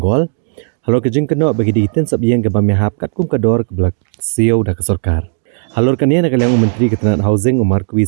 Halor gejing keno bagi dikitin sop yeng ke bamihap kat kum kador ke belak siau da ke sorkar. Halor kania nak kaliang Menteri Ketenat Housing Umar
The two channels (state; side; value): silent; left; digital silence